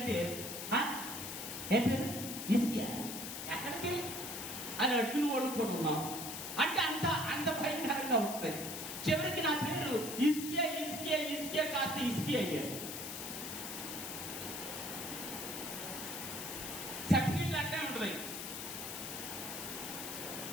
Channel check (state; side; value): noise; left; hiss, 6 dB below the sound